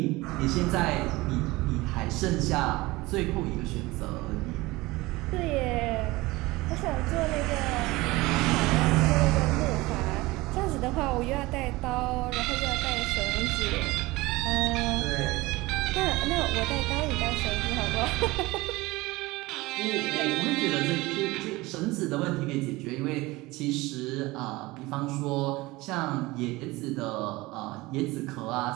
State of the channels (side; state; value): left; quieter; 20.8 dB